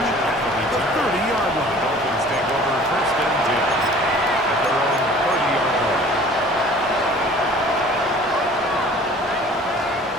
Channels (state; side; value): normal; both; correlation 0.48